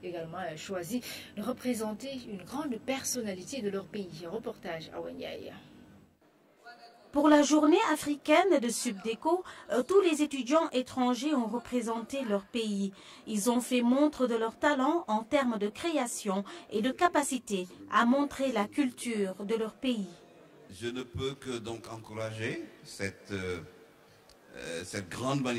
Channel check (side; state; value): both; identical; correlation 1.00